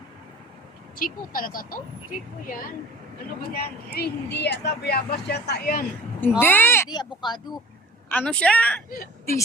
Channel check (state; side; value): normal; both; correlation 0.45